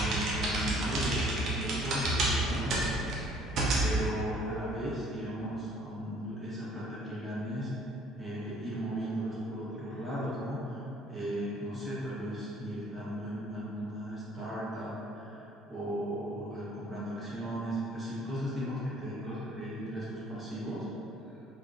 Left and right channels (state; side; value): normal; both; correlation 0.57